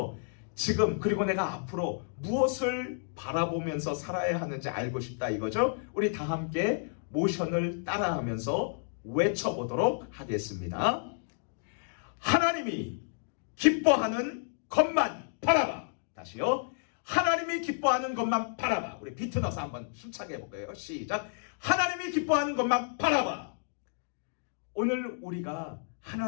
지금 그리고 내가 앞으로 무엇을 바라보면서 살아야 하는지 알고 싶다 이거죠. 우리 다 함께 모션을 따라하면서 외쳐보도록 하겠습니다. 하나님이 기뻐하는 것만 바라봐. 다시요. 하나님이 기뻐하는 것만 바라봐. 우리 비트 넣어서 한번 힘차게 해볼까요? 시작. 하나님이 기뻐하는 것만 바라봐. 오늘 우리가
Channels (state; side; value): silent; right; digital silence